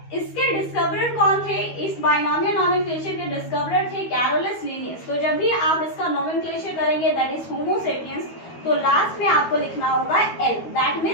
इसके डिस्कवरर कौन थे? इस बाइनोमियल नॉमेनक्लेचर के डिस्कवरर थे कैरोलस लिनियस. तो जब भी आप इसका नॉमेनक्लेचर करेंगे दैट इज होमो सेपियंस, तो लास्ट में आपको लिखना होगा एल, दैट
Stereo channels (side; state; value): right; late; 13 ms